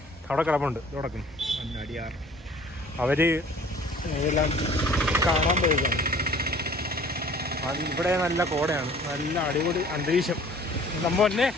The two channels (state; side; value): normal; both; correlation 0.50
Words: അവിടെ കിടപ്പുണ്ട് തുടക്കുന്നു. അടിയാർ അവര് ഇതെല്ലാം കാണാൻ പോയതാണ്. അത് ഇവിടെ നല്ല കോടയാണ്, നല്ല അടിപൊളി അന്തരീക്ഷം. നമ്മ തന്നെ